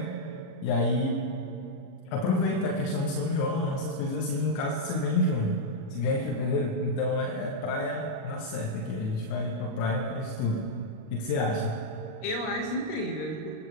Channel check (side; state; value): right; late; 37 ms